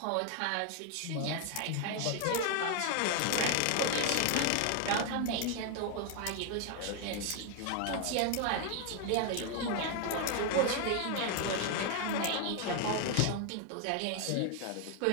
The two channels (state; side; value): different; both; correlation 0.00